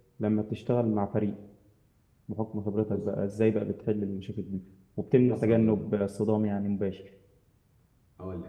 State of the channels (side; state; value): both; identical; correlation 1.00